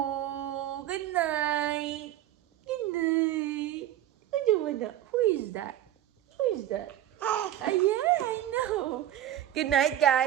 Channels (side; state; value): left; quieter; 12.3 dB